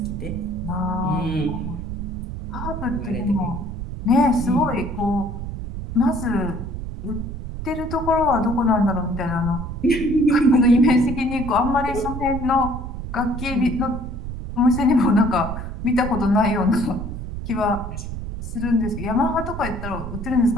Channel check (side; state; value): right; noise; rumble, 7 dB below the sound